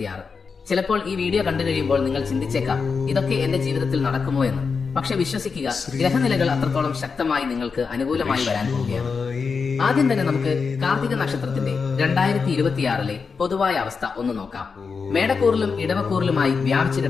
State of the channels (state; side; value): quieter; right; 5.2 dB